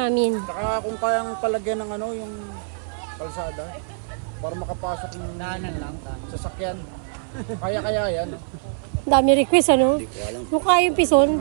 Saka kung kayang palagyan ng ano, yung kalsada, para makapasok ng sasakyan. Kaya yan. Dami request ano? Hindi ko alam. Mukha yung pison.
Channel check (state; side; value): silent; left; 57 dB below the other